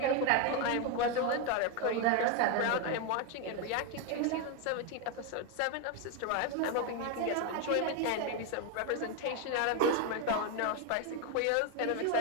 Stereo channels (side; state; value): both; different; correlation 0.02